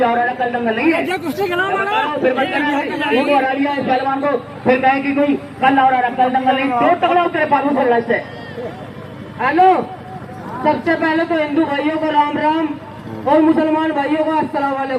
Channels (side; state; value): both; identical; correlation 1.00